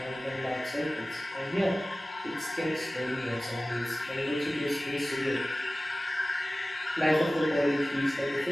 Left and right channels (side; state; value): both; normal; correlation 0.97